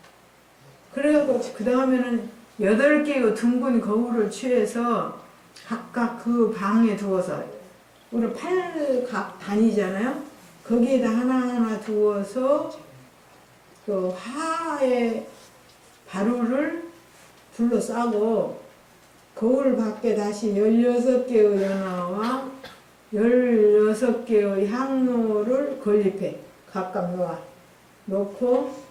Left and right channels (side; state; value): both; identical; correlation 1.00